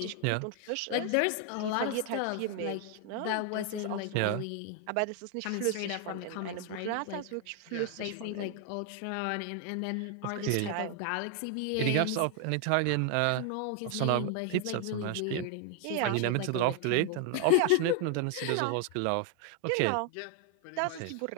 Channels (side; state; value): both; different; correlation 0.00